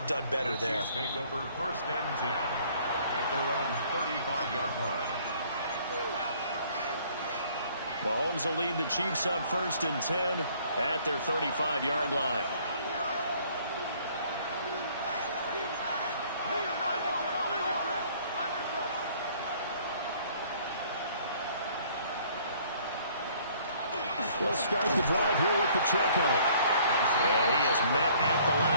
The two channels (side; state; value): both; inverted; correlation -0.58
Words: done better there. The Chiefs take over 1st and 10 at their own 35-yard line. Mahomes will lead the Chiefs up 1st and 10 at their 35-yard line. They'll start the drive here with Pacheco. And he is met at the